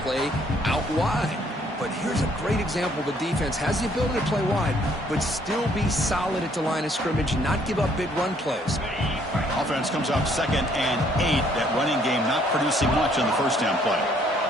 play out wide. But here's a great example. The defense has the ability to play wide, but still be solid at the line of scrimmage, not give up big run plays. Offense comes up 2nd and 8. That running game not producing much on the first down play.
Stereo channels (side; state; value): both; normal; correlation 0.65